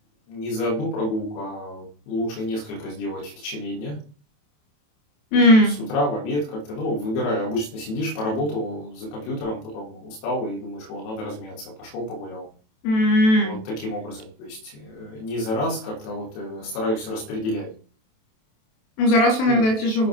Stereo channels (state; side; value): late; right; 27 ms